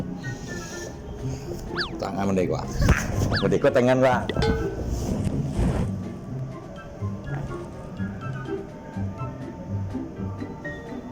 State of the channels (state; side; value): identical; both; correlation 1.00